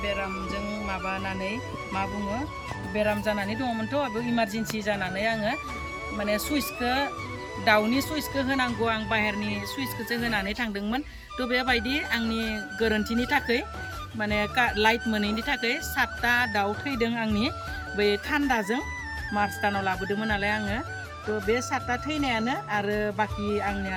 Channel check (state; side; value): identical; both; correlation 1.00